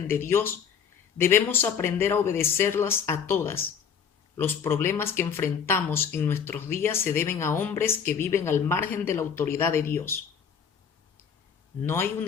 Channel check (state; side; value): quieter; right; 7.1 dB